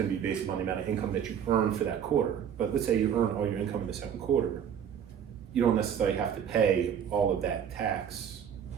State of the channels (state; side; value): quieter; left; 8.5 dB